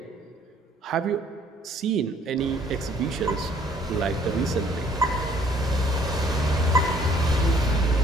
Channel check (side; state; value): both; normal; correlation 0.61